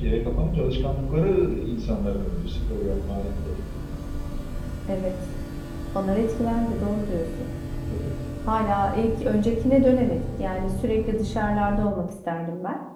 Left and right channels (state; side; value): identical; both; correlation 1.00